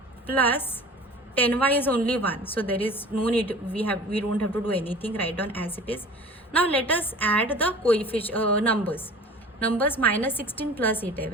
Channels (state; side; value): normal; both; correlation 0.41